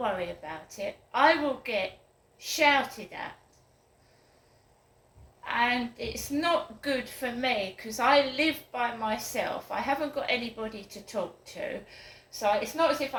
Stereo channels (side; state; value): both; identical; correlation 1.00